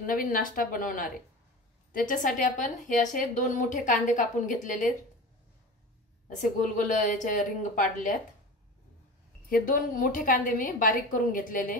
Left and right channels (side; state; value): both; normal; correlation 0.32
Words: नवीन नाश्ता बनवणार आहे। त्याच्यासाठी आपण हे असे 2 मोठे कांदे कापून घेतलेले, असे गोल गोल याचे रिंग पाडल्यात। हे 2 मोठे कांदे मी बारीक करून घेतलेले।